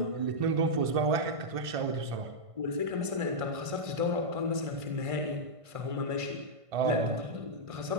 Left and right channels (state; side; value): late; left; 1.5 ms